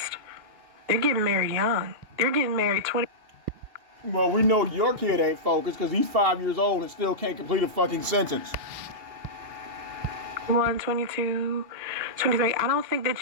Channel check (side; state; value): left; late; 2.8 ms